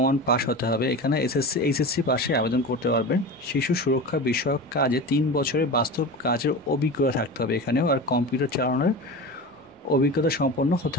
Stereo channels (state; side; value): normal; both; correlation 0.29